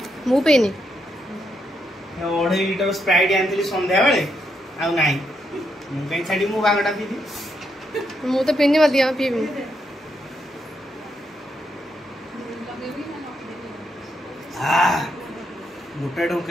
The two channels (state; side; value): normal; both; correlation 0.79